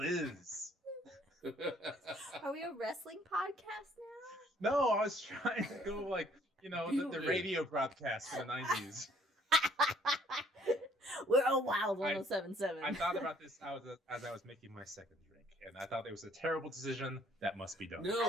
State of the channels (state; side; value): normal; both; correlation 0.62